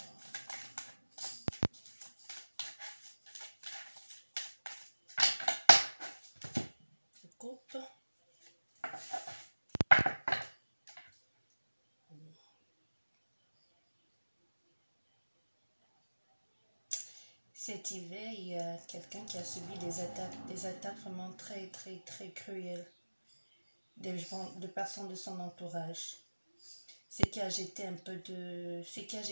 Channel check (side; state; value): both; inverted; correlation -1.00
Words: Je coupe. Cet hiver, il y a quelqu'un qui a subi des attaques vraiment très cruelles de personnes de son entourage. Ce qui a jeté